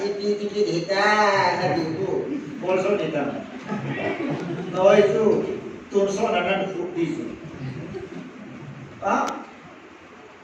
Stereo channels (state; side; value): identical; both; correlation 1.00